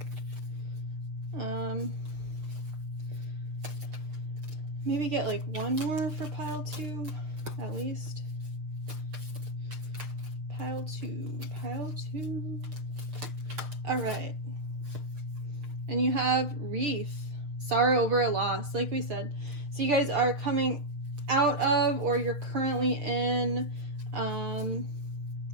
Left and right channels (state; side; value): late; left; 6.5 ms